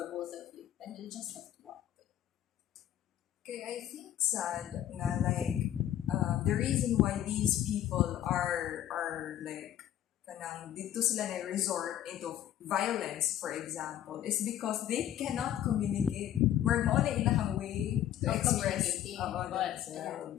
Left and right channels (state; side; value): quieter; right; 11.6 dB